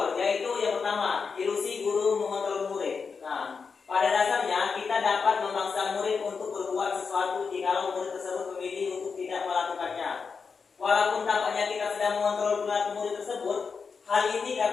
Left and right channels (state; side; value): quieter; right; 5.4 dB